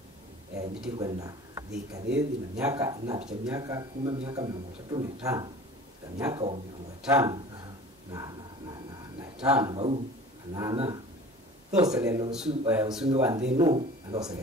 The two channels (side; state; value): both; normal; correlation 0.42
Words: nditikwenda dhikadhi na miaka inapicha miaka 10 miaka 35 na miaka 5 na tano bau anana those lelo usumi wa ndeno those